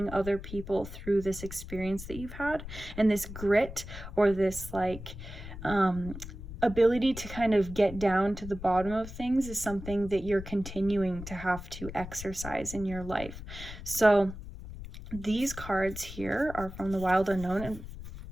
other people through this experience that you've had. And this grit, or this like ability to kind of get down to the bottom of things, is something that you're continuing to have to exercise in your life. So these cards here are from the Wild Unknown, and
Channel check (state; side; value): noise; left; rumble, 11 dB below the sound